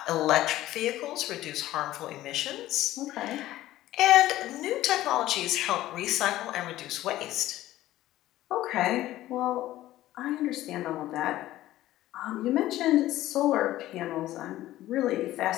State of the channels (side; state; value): right; quieter; 15.0 dB